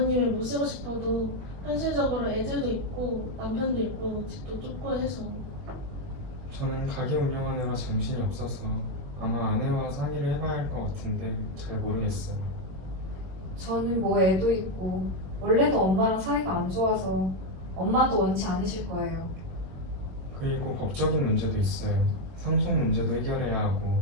모시고 싶어도 현실적으로 애들도 있고 남편도 있고 집도 좁고 해서. 저는 가게 운영하느라 정신이 없어서 아마 아내와 상의를 해봐야 할 것 같은데 잘 모르겠어요. 저는 애도 있고 원래도 엄마랑 사이가 안 좋아서 엄마도 원치 않으실 거예요. 그리고 법적인 문제도 있어요. 상속 문제도 해결해야 하고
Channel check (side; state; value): left; late; 22 ms